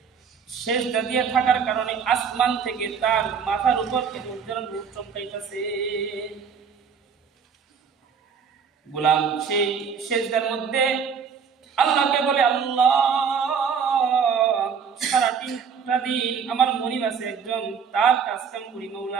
সেজদা দিয়ে থাকার কারণে আসমান থেকে তার মাথার উপর কেমন যেন নূর চমকাইতেছে। গোলাম সেই সেজদার মধ্যে আল্লাহকে বলে, আল্লাহ, সারাটা দিন আমার মনিব আছে একজন, তার কাজ কাম করি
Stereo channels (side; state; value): left; quieter; 6.5 dB